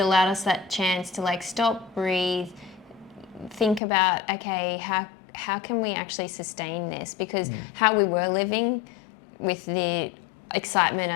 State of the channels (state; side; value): drops out; right; at 3.8 s